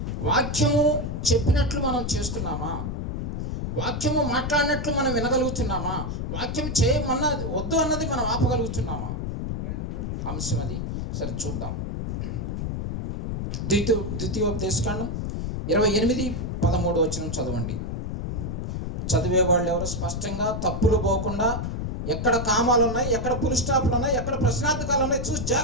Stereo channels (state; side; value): noise; left; rumble, 3 dB below the sound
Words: వాక్యము చెప్పినట్లు మనం చేస్తున్నామా? వాక్యము మాట్లాడినట్లు మనం వినగలుగుతున్నామా? వాక్యం చేయమన్నది వద్దు అన్నది మనం ఆపగలుగుతున్నామా? అంశం అది. సరే చూద్దాం. ద్వితీయోపదేశకాండం 28:13 వచనం చదవండి. చదివే వాళ్ళు ఎవరు స్పష్టంగా తప్పులు పోకుండా, ఎక్కడ కామాలు ఉన్నాయి, ఎక్కడ పుల్ స్టాప్లు ఉన్నాయి, ఎక్కడ ప్రశ్నార్థకాలు ఉన్నాయి చూసి